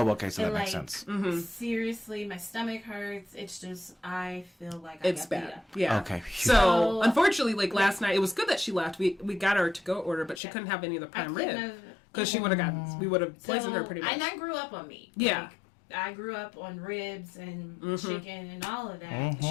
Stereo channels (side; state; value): right; drops out; at 10.4 s